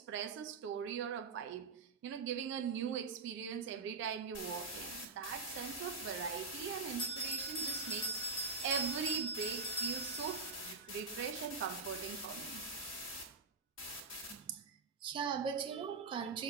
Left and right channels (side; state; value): left; quieter; 4.5 dB